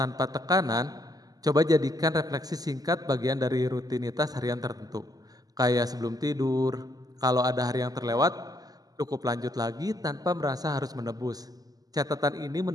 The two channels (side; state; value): left; late; 0.18 ms